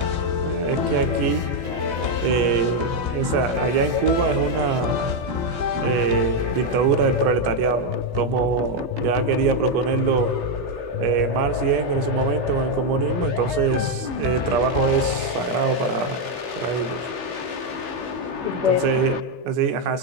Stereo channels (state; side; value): late; left; 17 ms